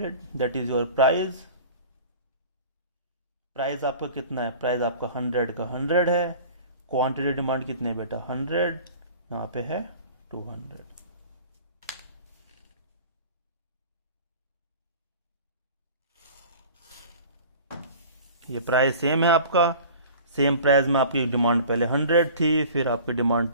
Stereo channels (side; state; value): both; inverted; correlation -0.43